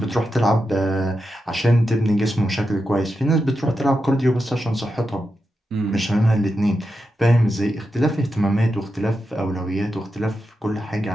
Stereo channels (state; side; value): normal; both; correlation 0.88